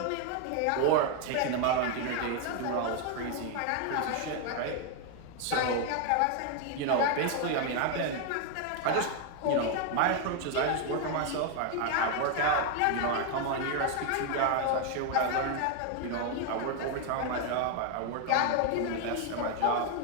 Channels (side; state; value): both; different; correlation 0.01